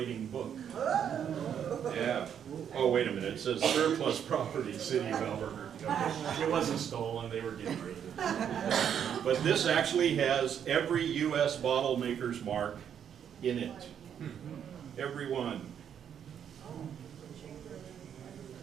book. Yeah. Oh, wait a minute. It says surplus property, City of Albuquerque. It wasn't stolen. They were getting rid of it. But this actually has every U.S. bottle maker's mark in it. Every one.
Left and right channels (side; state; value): left; quieter; 8.6 dB